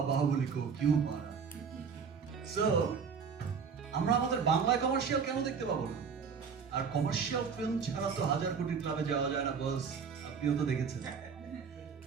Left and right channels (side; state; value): left; quieter; 6.1 dB